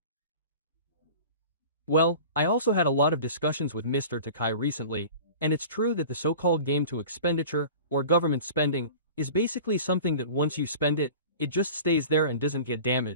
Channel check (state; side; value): inverted; both; correlation -0.40